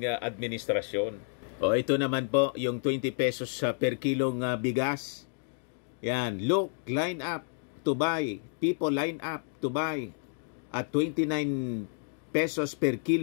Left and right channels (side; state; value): right; silent; digital silence